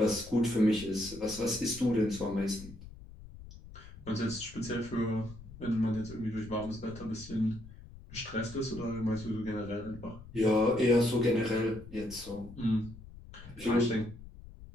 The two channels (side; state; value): left; noise; rumble, 16 dB below the sound